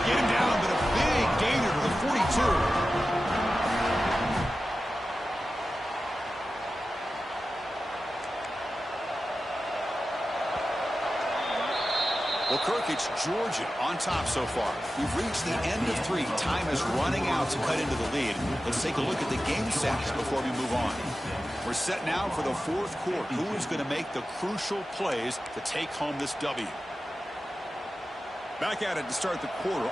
get him down, but a big gainer to the 42. Well, Kirk, it's Georgia on top so far. We've reached the end of 3. Time is running out to cut into the lead. Let's take a look at the game stats before we move on. We're set now for the 4th quarter. Who is going to make the crucial plays to take home this W? Back at it to start the quarter.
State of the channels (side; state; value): both; normal; correlation 0.94